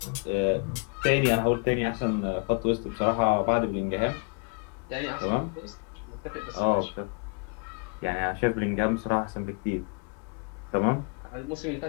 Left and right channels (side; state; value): right; quieter; 34.3 dB